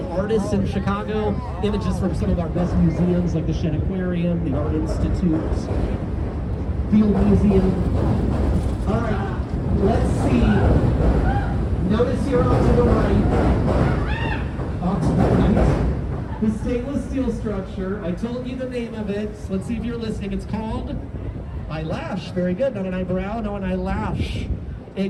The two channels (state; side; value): identical; both; correlation 1.00